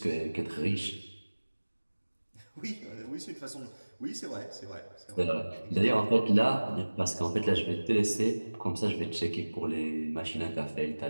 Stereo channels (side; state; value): both; inverted; correlation -1.00